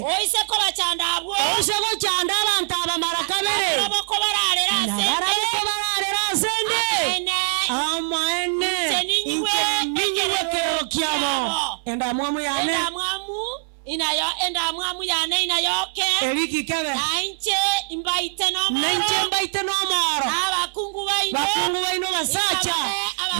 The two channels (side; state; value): left; silent; 64 dB below the other